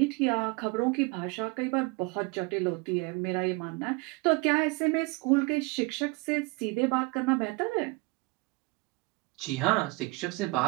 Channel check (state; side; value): quieter; left; 26.2 dB